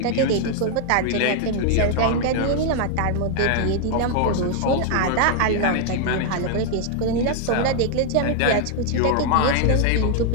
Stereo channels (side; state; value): both; different; correlation 0.00